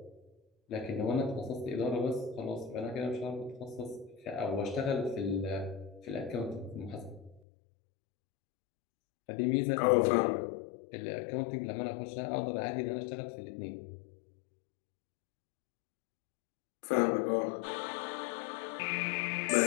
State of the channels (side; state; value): right; drops out; at 7.4 s